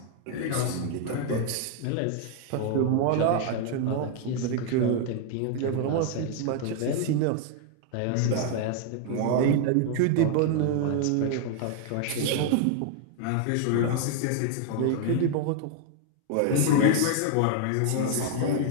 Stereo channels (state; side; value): different; both; correlation 0.00